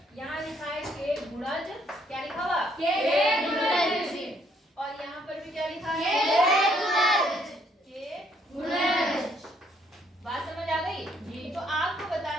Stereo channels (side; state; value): both; normal; correlation 0.68